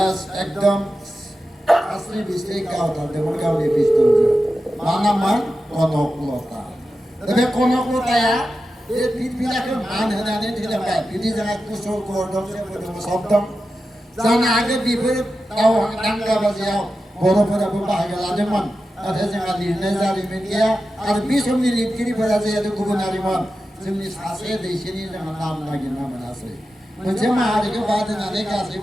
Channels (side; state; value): both; normal; correlation 0.91